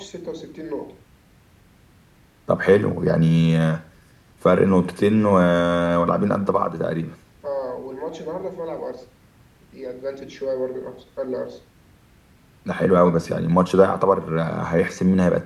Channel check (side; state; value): both; identical; correlation 1.00